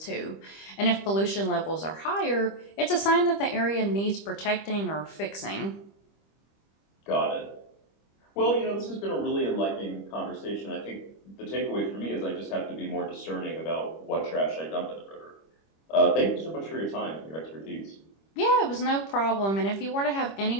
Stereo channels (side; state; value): right; late; 25 ms